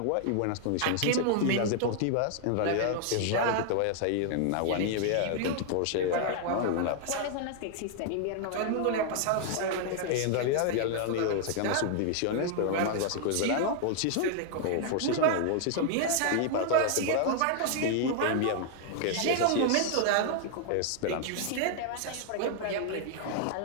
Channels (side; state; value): both; different; correlation 0.00